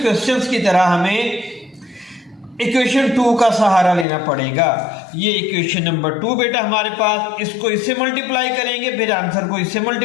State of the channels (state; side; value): drops out; right; at 4.0 s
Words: क्वेश्चंस की तरह हमें इक्वेशन 2 का सहारा लेना पड़ेगा। ये इक्वेशन नंबर 2 बेटा हमारे पास, इसको इससे मल्टीप्लाई करेंगे, फिर आंसर को इससे